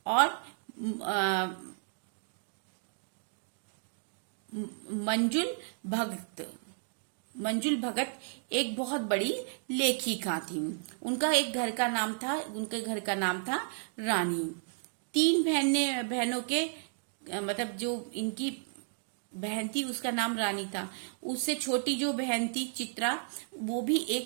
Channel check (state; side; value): silent; left; 56 dB below the other